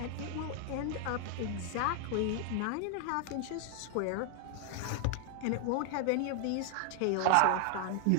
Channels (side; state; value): both; different; correlation 0.00